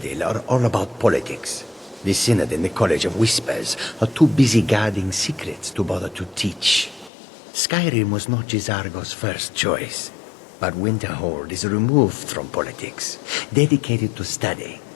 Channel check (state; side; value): drops out; right; at 7.1 s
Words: are all about politics. The Synod and the College of Whispers are too busy guarding secrets to bother to teach. Skyrim was not Gisargo's first choice, but Winterhold is removed from politics, dedicated to study.